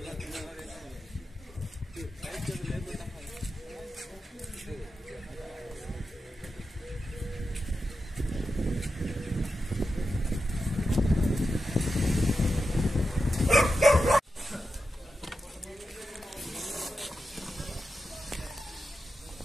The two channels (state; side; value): normal; both; correlation 0.90